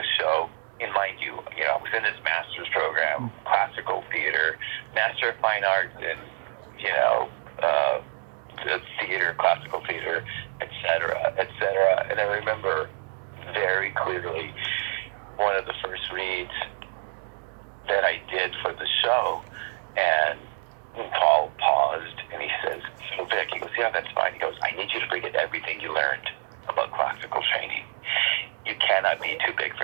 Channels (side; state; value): left; silent; digital silence